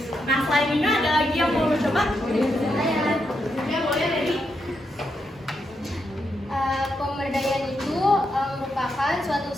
Nah, selain ini ada lagi yang mau coba? Ya, boleh dari. Pemberdayaan itu merupakan suatu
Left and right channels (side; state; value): both; normal; correlation 0.82